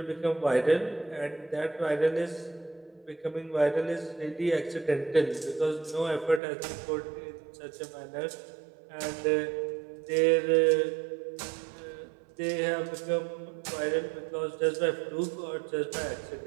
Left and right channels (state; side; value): drops out; left; at 6.4 s